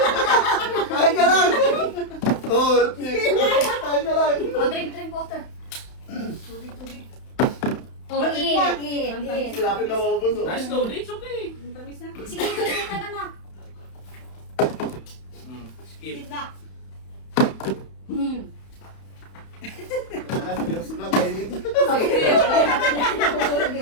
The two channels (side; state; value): right; late; 31 ms